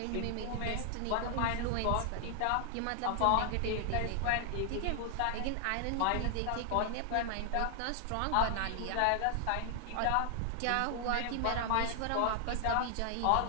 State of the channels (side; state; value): both; different; correlation 0.00